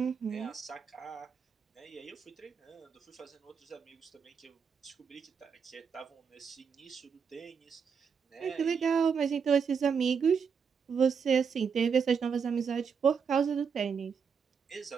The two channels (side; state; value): left; quieter; 6.3 dB